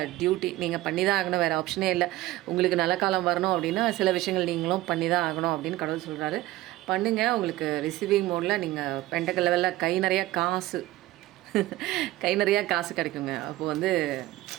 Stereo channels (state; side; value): quieter; left; 16.8 dB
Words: டியூட்டி, நீங்கள் பண்ணி தான் ஆகணும், வேறு ஆப்ஷனே இல்லை. உங்களுக்கு நல்ல காலம் வரணும் அப்படின்னா சில விஷயங்கள் நீங்களும் பண்ணி தான் ஆகணும் அப்படின்னு கடவுள் சொல்கிறாரு. பண்ணுங்கள். உங்களுக்கு ரிசீவிங் மோடில் நீங்கள் பெண்டக்கல் லெவலில் கை நிறையா காசு கிடைக்குங்க. அப்போது வந்து